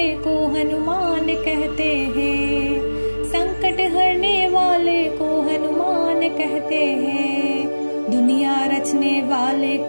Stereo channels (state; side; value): inverted; both; correlation -1.00